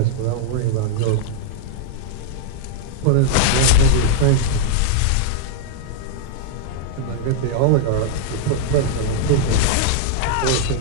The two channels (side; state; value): both; different; correlation -0.01